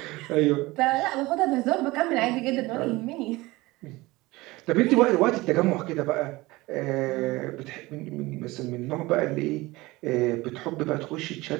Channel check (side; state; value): left; quieter; 20.8 dB